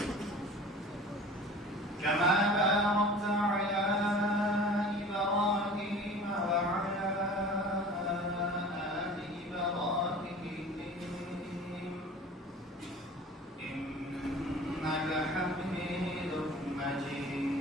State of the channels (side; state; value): both; normal; correlation 0.42